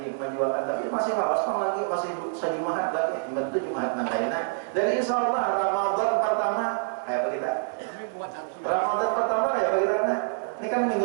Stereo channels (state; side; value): silent; left; 60 dB below the other